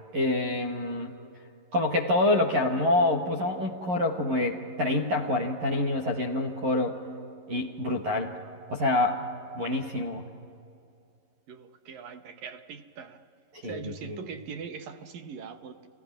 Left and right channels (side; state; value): left; late; 11 ms